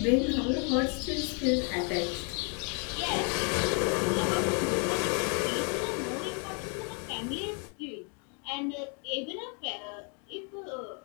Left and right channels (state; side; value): quieter; right; 38.2 dB